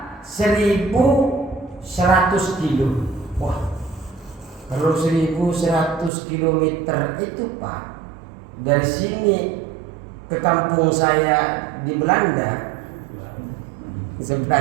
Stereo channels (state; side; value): drops out; left; at 6.1 s